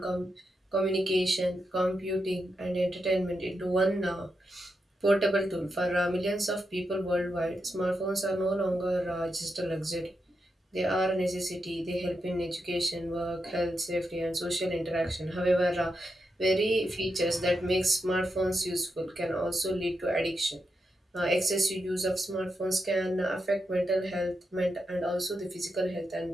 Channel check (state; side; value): normal; both; correlation 0.85